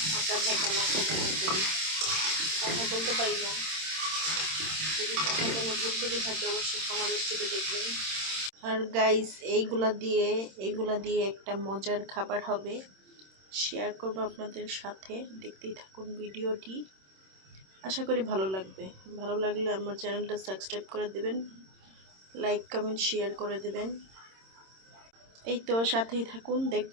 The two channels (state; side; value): late; left; 26 ms